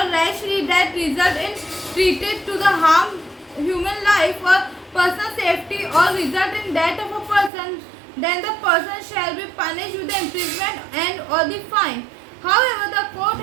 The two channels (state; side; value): drops out; left; at 7.5 s